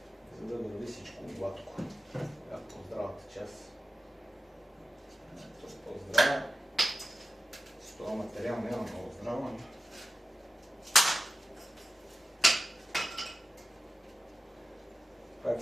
За да върви всичко гладко. По-здравата част. По-здрава. С това материал няма много здрава. Пак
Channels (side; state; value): both; normal; correlation 0.93